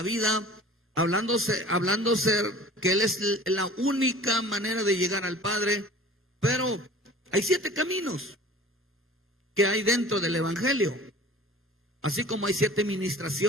vida, hablándose que Él es la única manera de llegar al Padre. Pero hay 7 caminos que hay dentro del evangelio, así como hay 7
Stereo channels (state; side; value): normal; both; correlation 0.44